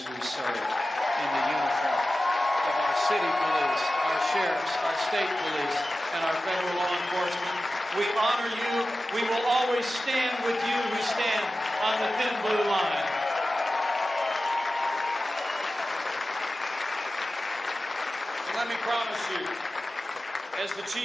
who serve in the uniform of our city police, our sheriffs, our state police, and our federal law enforcement? We honor you. We will always stand with you who stand on the thin blue line. Let me promise you, as the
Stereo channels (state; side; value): normal; both; correlation 0.94